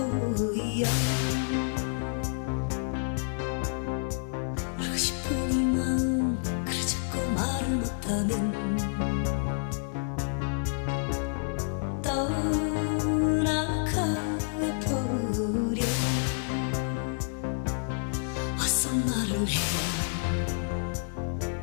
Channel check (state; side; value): silent; right; digital silence